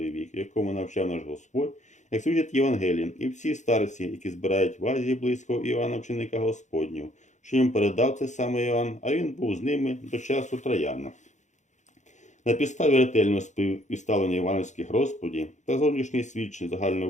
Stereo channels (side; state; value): right; late; 0.35 ms